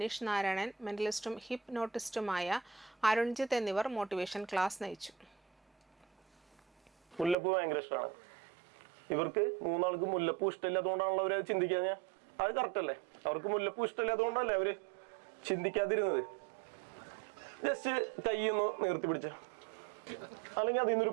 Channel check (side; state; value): left; drops out; at 7.4 s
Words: നാരായണൻ, മെന്റലിസ്റ്റും ഹിപ്നോട്ടിസ്റ്റുമായ അരുൺജിത്ത് എന്നിവർ മോട്ടിവേഷൻ ക്ലാസ് നയിച്ചു. മുല്ലപ്പൂ ഭയങ്കര ഇഷ്ടമാണ് ഇവർക്ക്. 3 ആൾക്ക് മുല്ലപ്പൂ ഇഷ്ടമില്ലാത്തതുകൊണ്ടാണല്ലോ അവര് ചിന്തിക്കാൻ. അത് കറക്റ്റ് അല്ലേ? അവർക്ക് മുല്ലപ്പൂ ഇഷ്ടമില്ലാത്തതുകൊണ്ടല്ലേ അവര് ചിന്തിക്കാതിരുന്നത്. ജസ്റ്റ് കൈയൊന്ന് നിർത്തി പിടിച്ച, അല്ലെങ്കിൽ അതിൽ നിന്നൊരു